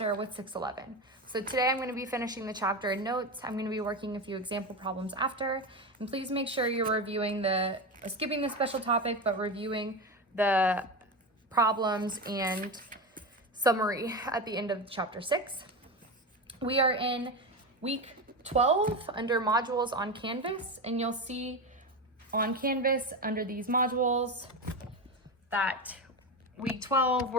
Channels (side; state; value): both; normal; correlation 0.19